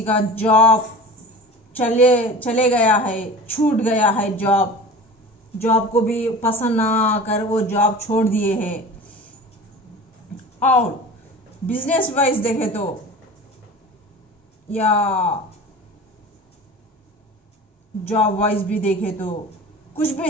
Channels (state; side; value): normal; both; correlation 0.37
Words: का जॉब चले गया है, छूट गया है। जॉब को भी पसंद ना आकर वो जॉब छोड़ दिए हैं। और बिजनेस वाइज देखे तो या जॉब वाइज भी देखे तो कुछ भी